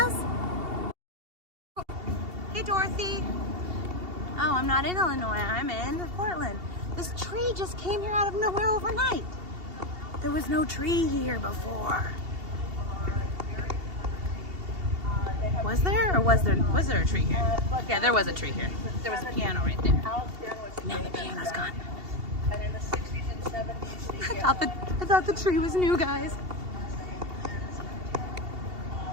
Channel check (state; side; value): late; left; 2.7 ms